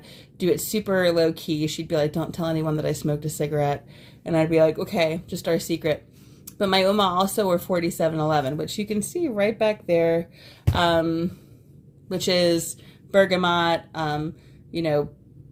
do it super low key. She'd be like, "Don't tell anyone that I smoked a cigarette." And I'd be like, "Okay, just our secret." But my Oma also wore 4711, which you can see right back there, which is bergamot,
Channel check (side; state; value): both; identical; correlation 1.00